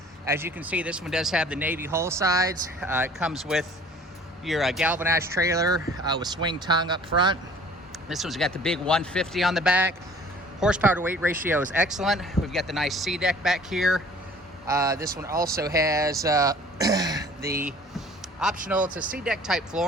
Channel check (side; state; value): both; normal; correlation 0.50